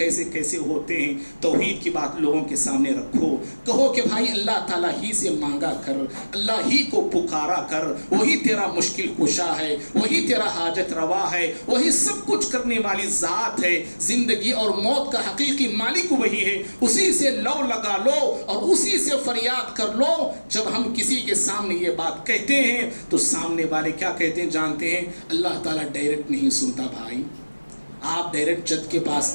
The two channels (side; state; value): both; inverted; correlation -1.00